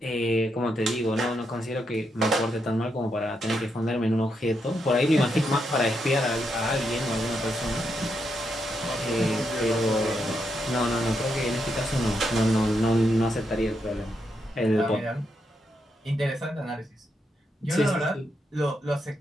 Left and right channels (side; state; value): both; normal; correlation 0.81